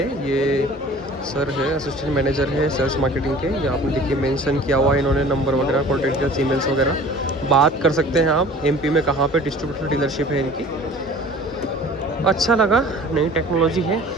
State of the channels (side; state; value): both; normal; correlation 0.45